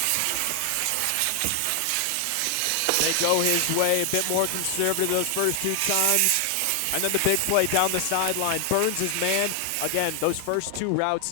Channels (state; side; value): different; both; correlation 0.00